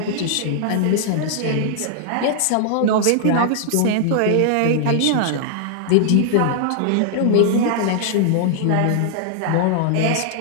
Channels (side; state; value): both; different; correlation -0.01